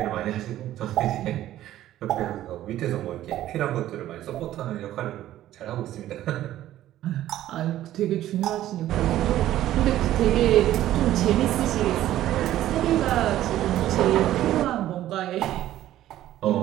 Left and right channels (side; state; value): left; quieter; 13.4 dB